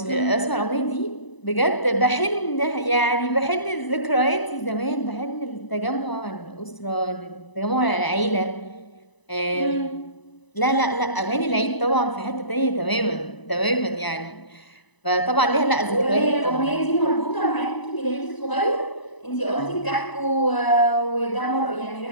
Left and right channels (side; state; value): right; late; 1.0 ms